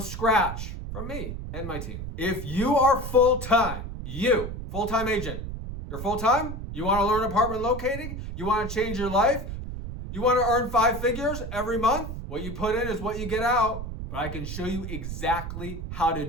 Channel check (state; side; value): noise; right; rumble, 7 dB below the sound